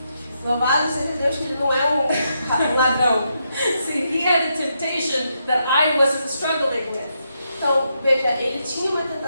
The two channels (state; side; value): inverted; both; correlation -0.81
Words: Louvado seja Deus que ele não é um ladrão. See, he had a temptation that I wasn't struggling with. Então, veja, ele tinha uma